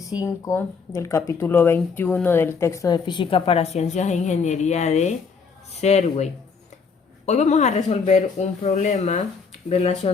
del capítulo 21 del texto de Física para Ciencias e Ingeniería de Serway. Hoy vamos a resolver un problema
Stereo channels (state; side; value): quieter; right; 5.3 dB